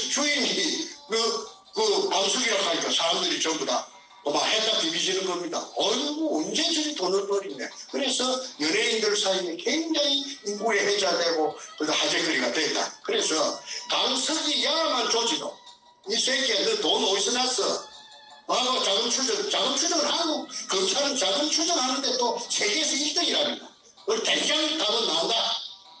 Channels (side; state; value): both; identical; correlation 1.00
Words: 주인이 그 강석이라고 하니까 사람들이 전부 다 막 했다 비비지는 겁니다. 어이구 언제 저리 돈을 버리네. 그래서 연예인들 사이에 굉장히 인구에 회자되고 화제거리가 됐다. 그래서 강석이 야만 조지도 이 새끼야 너 돈 어디서 났어? 자금 추정을 하고 검찰은 자금 추정하는데 또 세계에서 1등이랍니다. 그걸 대장 답은 나온다.